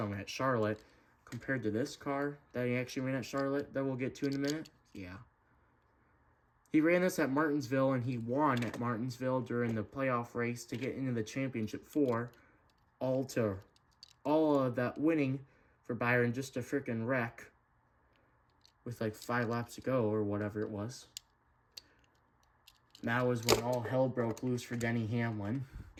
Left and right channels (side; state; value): both; identical; correlation 1.00